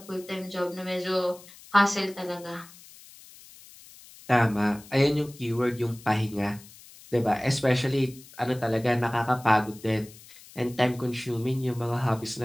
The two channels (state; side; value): noise; left; hiss, 21 dB below the sound